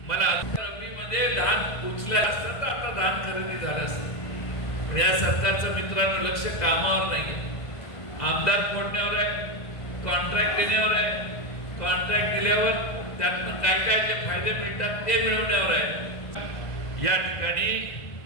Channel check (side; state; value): right; late; 2.0 ms